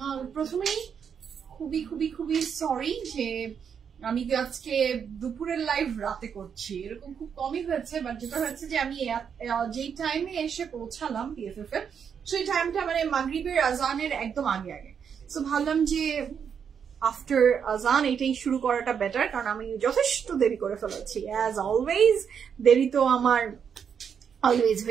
প্রথমেই খুবই সরি যে আমি আজকে দুপুরের লাইভ রাতে করছি, এরকম খুব কমই হয়েছে। বাট যেটা হয়েছে যে আমি যেই টাইমে এসে পৌঁছালাম পিএফএফ এর, সেই টাইমটা মানে মাগরিবের আজানের একদম আগে। সো ভাবলাম যে আফটার আজান এটাই শুরু করাটা বেটার, কারণ আমি যথেষ্ট দেরি করে ফেলেছি। অ্যাজ অলওয়েজ দেরি তো আমার অলওয়েজ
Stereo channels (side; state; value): left; quieter; 7.3 dB